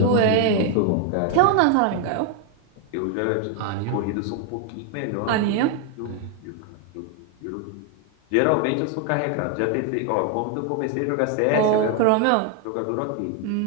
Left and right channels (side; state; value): both; different; correlation 0.00